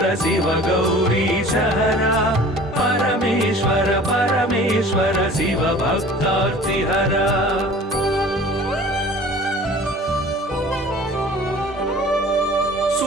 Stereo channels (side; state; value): both; normal; correlation 0.45